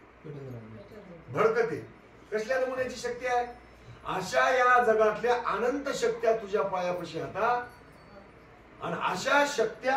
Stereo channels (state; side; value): identical; both; correlation 1.00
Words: भडकते. कसल्या नमुन्याची शक्ती आहे? अशा या जगातल्या अनंत शक्त्या तुझ्या पायापाशी आता. आणि अशा